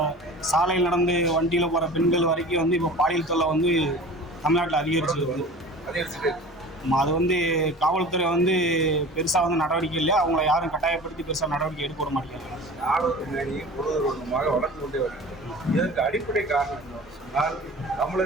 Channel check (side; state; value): both; normal; correlation 0.39